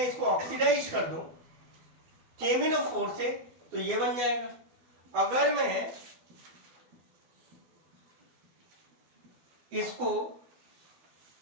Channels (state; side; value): late; left; 12 ms